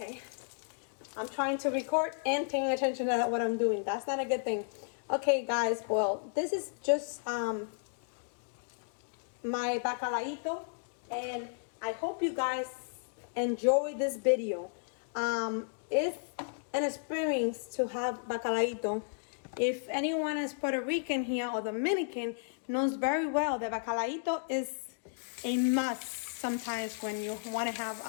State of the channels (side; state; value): right; silent; digital silence